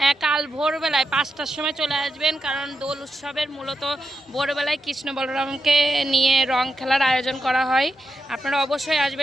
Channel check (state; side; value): normal; both; correlation 0.87